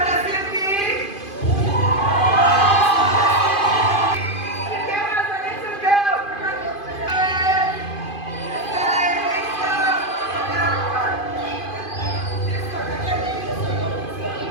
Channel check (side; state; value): right; late; 2.5 ms